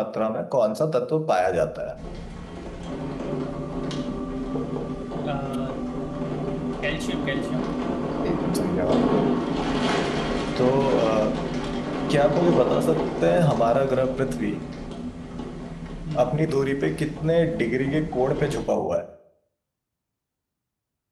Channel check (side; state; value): both; identical; correlation 1.00